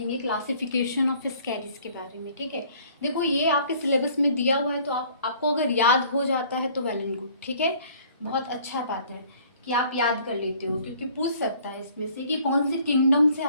क्लासिफिकेशन ऑफ स्कैरीज के बारे में, ठीक है। देखो ये आपके सिलेबस में दिया हुआ है, तो आपको अगर याद हो जाता है तो वेल एंड गुड, ठीक है। बहुत अच्छा बात है कि आप याद कर लेते हो, क्योंकि पूछ सकता है इसमें से कि कौन से किंगडम से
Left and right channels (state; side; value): inverted; both; correlation -0.56